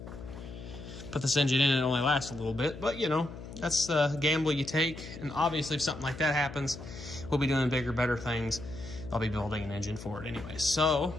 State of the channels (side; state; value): left; noise; hum, 12 dB below the sound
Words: put this engine in and it only lasts a little bit, but you know, that's the gamble you take. And obviously if something like that happens, we'll be doing bigger, better things. I'll be building an engine for it anyway. So